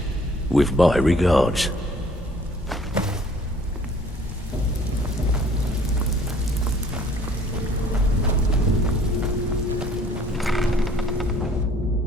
with my regards.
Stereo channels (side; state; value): both; normal; correlation 0.56